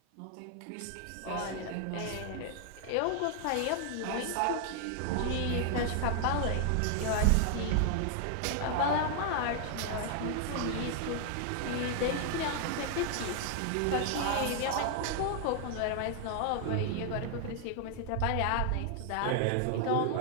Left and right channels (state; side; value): different; both; correlation 0.00